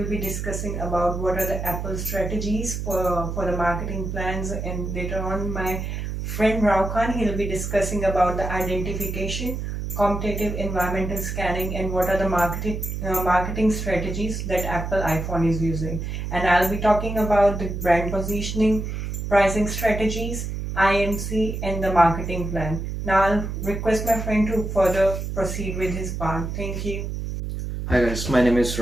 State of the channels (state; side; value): noise; right; hum, 4 dB below the sound